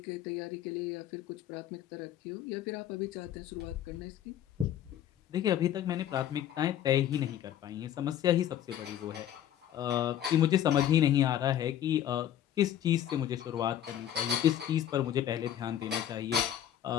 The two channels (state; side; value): quieter; right; 10.9 dB